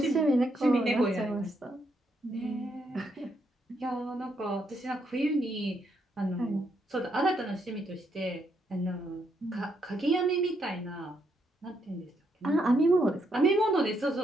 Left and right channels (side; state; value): both; normal; correlation 0.76